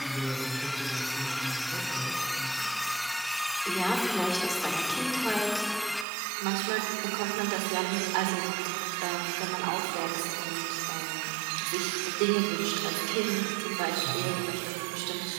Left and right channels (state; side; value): drops out; left; at 6.1 s